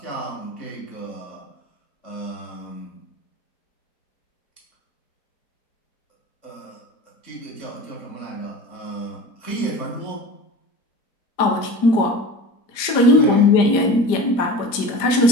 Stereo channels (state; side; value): late; right; 4.9 ms